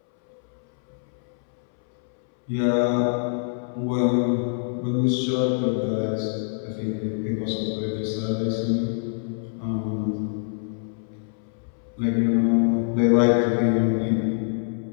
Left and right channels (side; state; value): right; silent; 62 dB below the other